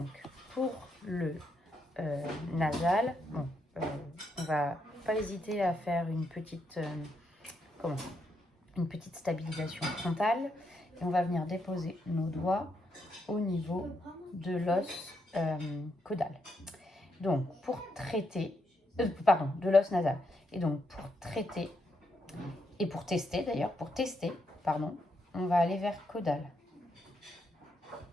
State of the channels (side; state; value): both; normal; correlation 0.79